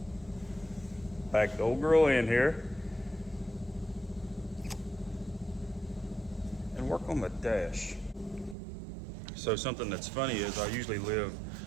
Pack the old girl in here and work on the dash. So something that's funny is I usually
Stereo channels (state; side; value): drops out; left; at 8.6 s